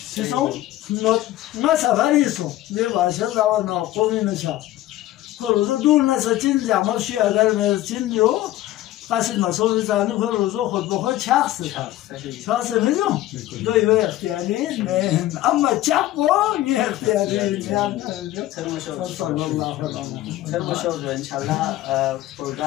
چی سو نه سفریسو نه باشه داور ناقومی نشا روزو دور نسا چین جمع شی اگر چین جو قصد مسئول زنی روزو خود بخود چخصه چخصه میدون دوی اختیاری نه اما چپ با یه اختیاری صلی الله علیه و انشالله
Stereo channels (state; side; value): quieter; right; 15.0 dB